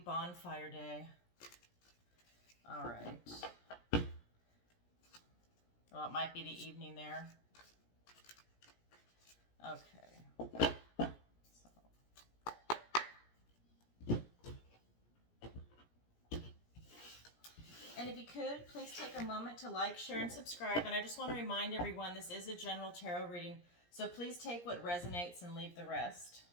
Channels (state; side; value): late; right; 17 ms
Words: Day. All right. Well, it might be the evening there. Okay. And if you could, please take a moment to like, share, and subscribe. And I just want to remind everyone this is a general tarot reading, so please take what resonates and leave the rest.